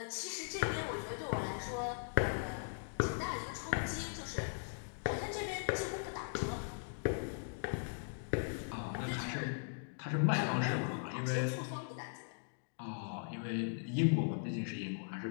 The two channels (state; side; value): silent; right; digital silence